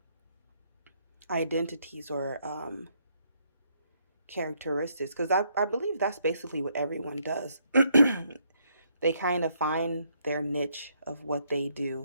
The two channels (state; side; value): inverted; both; correlation -0.72